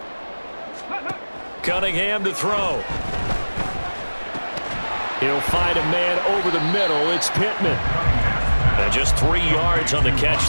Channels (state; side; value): inverted; both; correlation -1.00